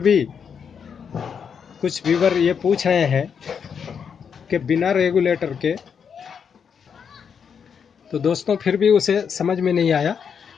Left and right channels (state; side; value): quieter; right; 6.9 dB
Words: कुछ व्यूवर ये पूछ रहे हैं कि बिना रेगुलेटर के, तो दोस्तों फिर भी उसे समझ में नहीं आया